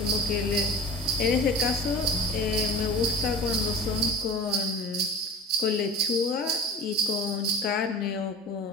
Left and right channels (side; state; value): both; normal; correlation 0.37